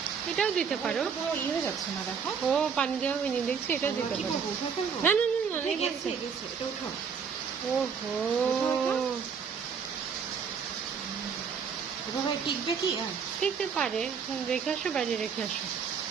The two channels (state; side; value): quieter; left; 6.4 dB